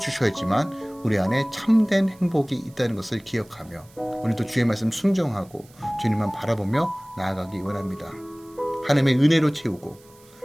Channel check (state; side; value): noise; right; hiss, 27 dB below the sound